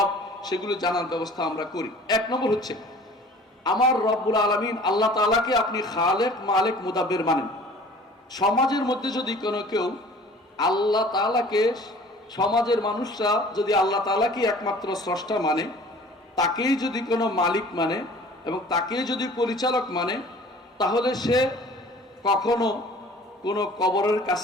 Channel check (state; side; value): normal; both; correlation 0.48